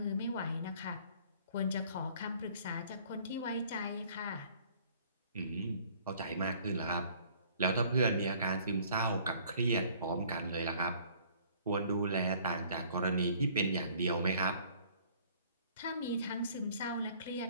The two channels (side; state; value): both; inverted; correlation -0.56